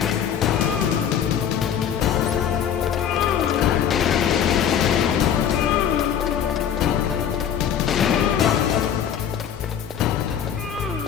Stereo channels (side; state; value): right; quieter; 8.8 dB